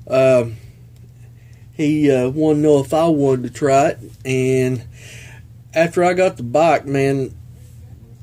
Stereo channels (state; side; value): identical; both; correlation 1.00